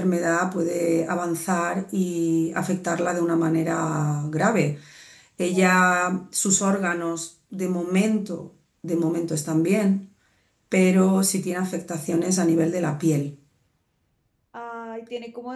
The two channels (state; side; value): identical; both; correlation 1.00